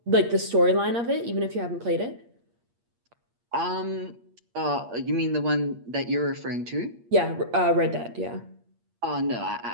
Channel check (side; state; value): left; late; 8.5 ms